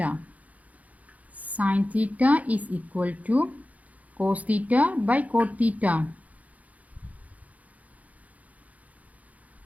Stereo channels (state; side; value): late; left; 0.072 ms